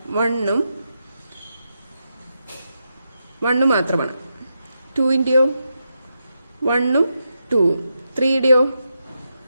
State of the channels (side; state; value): both; inverted; correlation -0.85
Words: 1ഉം 1 മാത്രമാണ്. 2ന്റെയോ 1ഉം 2ഉം. 3യുടെയോ